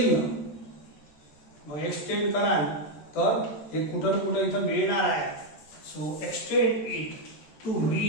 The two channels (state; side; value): late; right; 13 ms